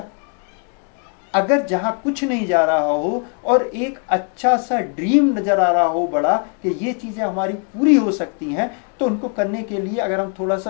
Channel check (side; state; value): right; quieter; 39.4 dB